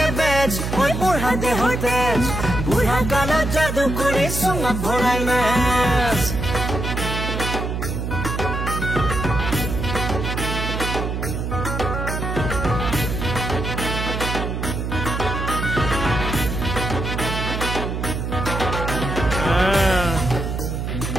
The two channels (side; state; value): right; noise; hum, 3 dB below the sound